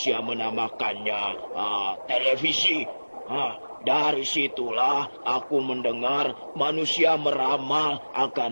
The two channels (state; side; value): inverted; both; correlation -1.00